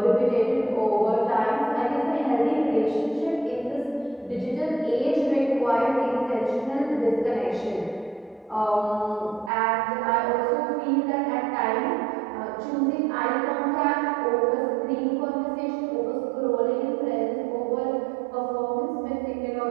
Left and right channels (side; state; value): left; drops out; at 9.5 s